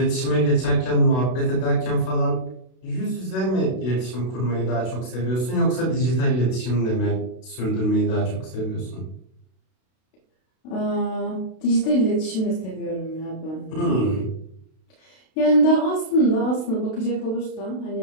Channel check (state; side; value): late; right; 32 ms